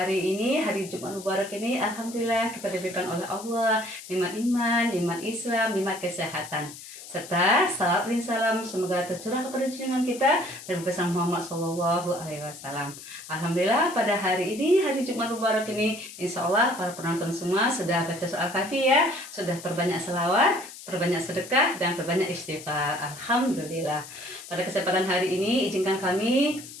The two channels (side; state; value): left; noise; hiss, 15 dB below the sound